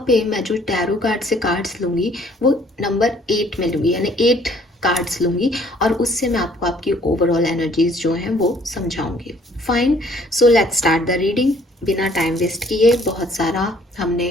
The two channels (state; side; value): normal; both; correlation 0.59